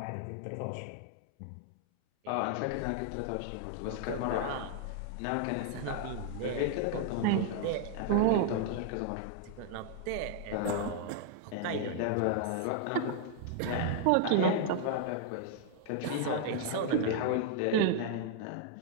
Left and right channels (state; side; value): different; both; correlation 0.00